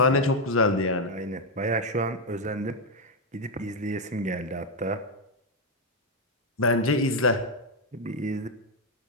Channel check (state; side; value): normal; both; correlation 0.03